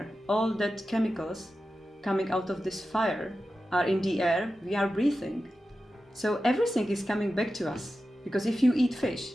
All that chemicals coming out of this fire are in the air we are breathing. So everything is coming back to us, because if you eat fish,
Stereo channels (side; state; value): both; normal; correlation 0.92